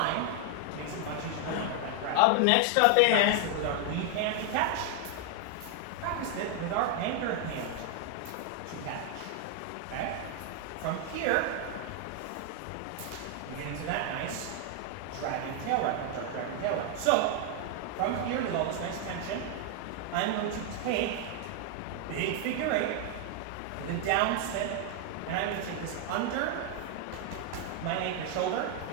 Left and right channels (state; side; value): different; both; correlation 0.00